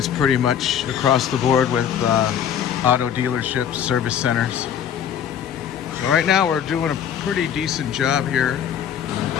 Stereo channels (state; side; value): quieter; right; 9.0 dB